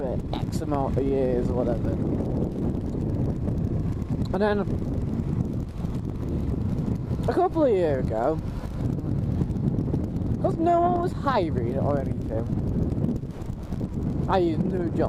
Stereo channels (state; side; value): identical; both; correlation 1.00